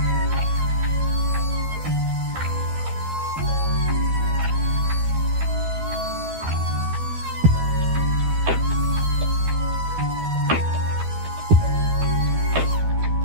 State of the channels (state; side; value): late; left; 12 ms